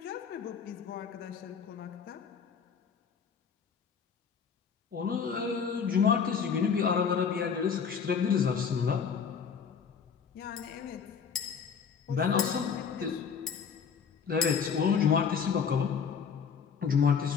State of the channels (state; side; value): quieter; right; 6.5 dB